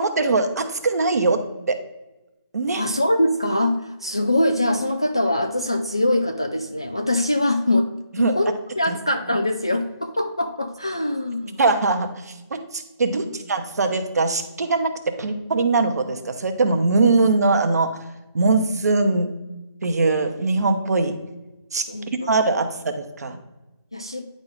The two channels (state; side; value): inverted; both; correlation -0.71